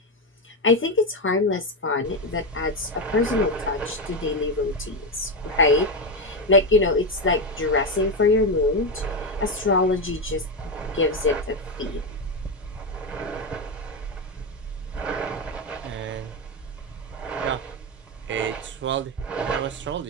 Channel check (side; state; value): both; normal; correlation 0.11